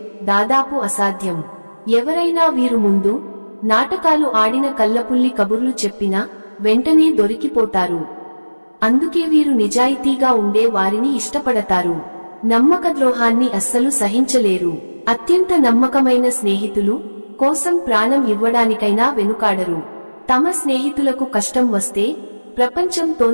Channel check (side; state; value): both; inverted; correlation -1.00